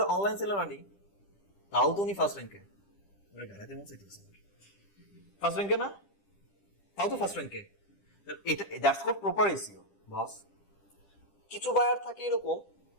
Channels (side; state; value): right; late; 10 ms